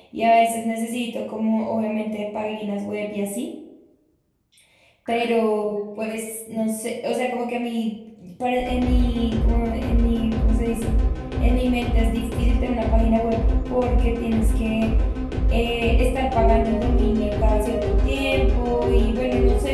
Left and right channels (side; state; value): both; identical; correlation 1.00